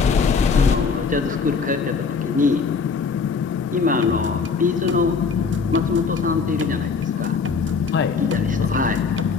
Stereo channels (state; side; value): quieter; right; 5.1 dB